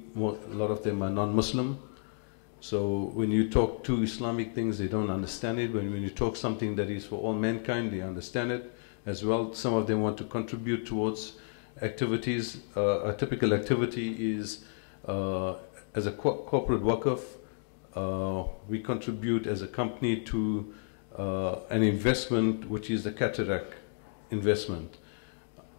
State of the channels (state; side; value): silent; right; digital silence